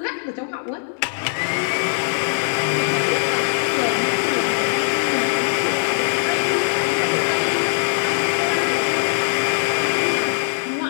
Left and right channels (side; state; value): right; silent; 65 dB below the other